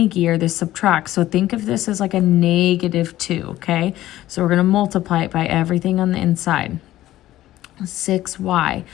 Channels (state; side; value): quieter; right; 14.6 dB